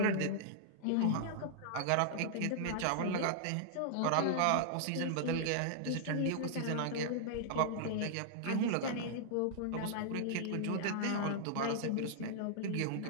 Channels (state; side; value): different; both; correlation -0.01